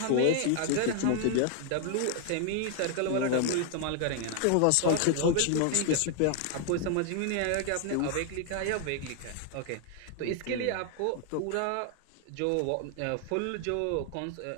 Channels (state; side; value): different; both; correlation 0.00